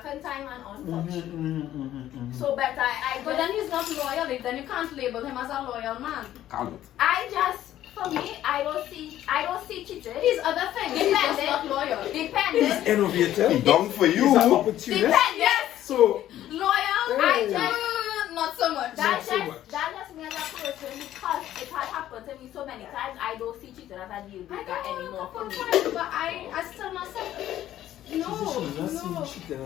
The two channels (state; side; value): quieter; right; 12.6 dB